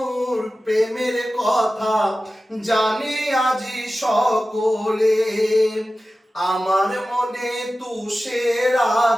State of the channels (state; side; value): normal; both; correlation 0.95